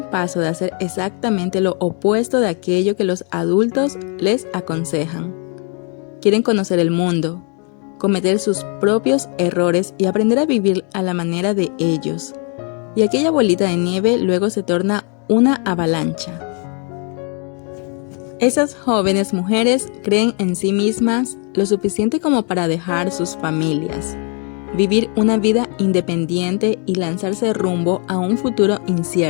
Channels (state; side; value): quieter; right; 37.9 dB